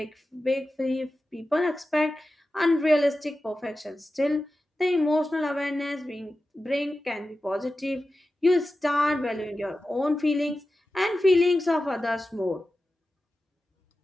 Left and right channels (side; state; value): both; normal; correlation 0.93